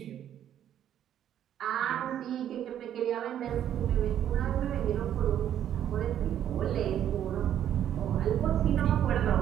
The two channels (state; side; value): quieter; left; 10.5 dB